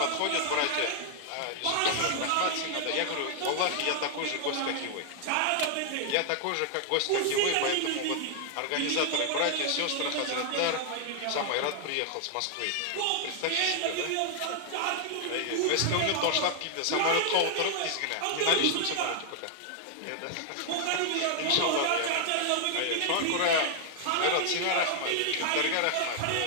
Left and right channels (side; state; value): both; different; correlation 0.00